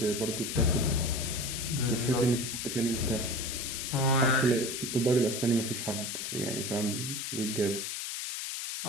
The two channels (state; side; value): noise; left; hiss, 4 dB below the sound